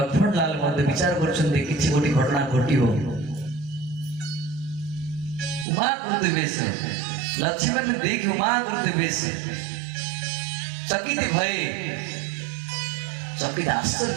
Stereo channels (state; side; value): drops out; left; at 5.7 s